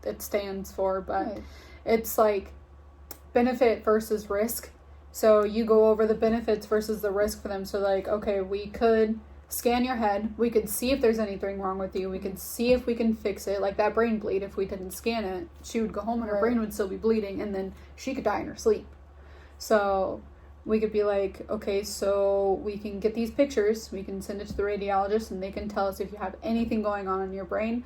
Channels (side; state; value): both; identical; correlation 1.00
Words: it stands for. But it's like benefit versus risk. So you go over the benefits versus the risk for them. So like, okay, we could scan your head. We could see if there's anything wrong with you. We could see if we can fix it. Like that brain bleed, if we didn't scan it, she would go home and her brain would still be bleeding, and then she could die in her sleep. So we could be like, okay, so we can get these pictures, we can send it to the radiologist, and they can tell us if you have anything going on in your brain.